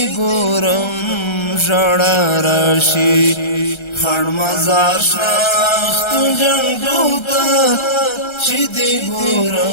ګورم ژړا راشي خړ مزار شناخت جنګو ته چې دی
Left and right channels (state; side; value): late; right; 1.3 ms